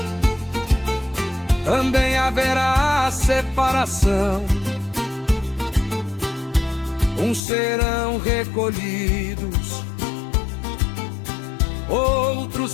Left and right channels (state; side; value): drops out; right; at 7.4 s